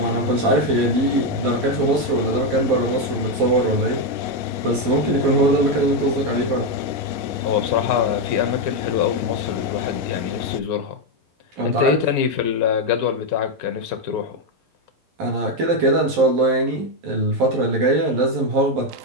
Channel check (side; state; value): left; late; 11 ms